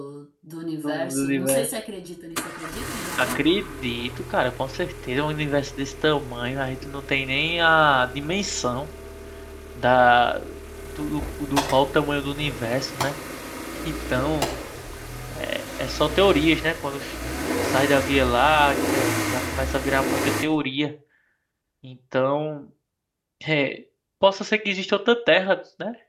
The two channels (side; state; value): both; identical; correlation 1.00